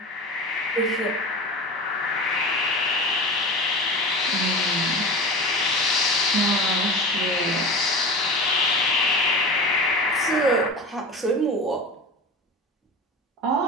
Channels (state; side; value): normal; both; correlation 0.31